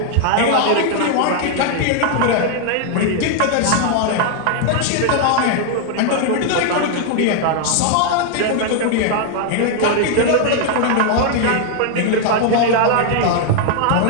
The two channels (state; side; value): different; both; correlation 0.00